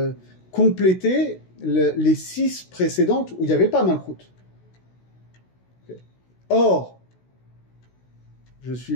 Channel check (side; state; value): right; late; 16 ms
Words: compléter les 6 précédentes où il n'y avait pas Malchut. Okay. Or, je suis